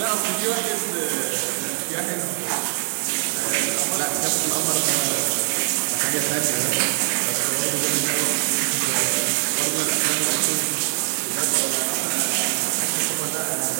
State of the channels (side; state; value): left; silent; digital silence